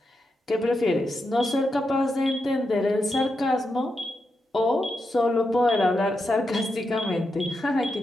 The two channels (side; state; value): both; normal; correlation 0.86